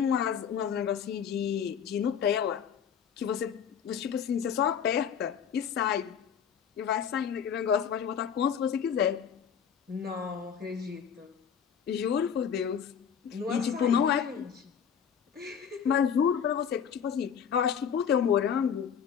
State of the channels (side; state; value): right; quieter; 7.8 dB